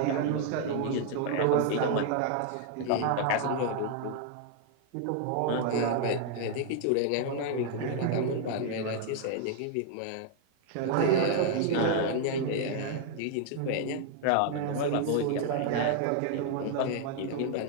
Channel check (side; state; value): both; different; correlation 0.00